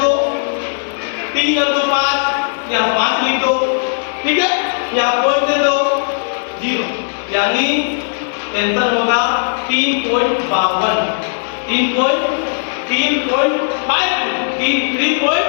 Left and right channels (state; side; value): silent; right; digital silence